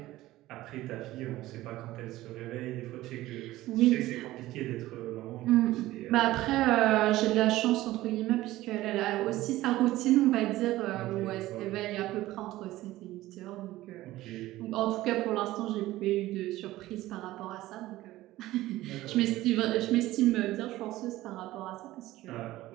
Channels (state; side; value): quieter; left; 16.5 dB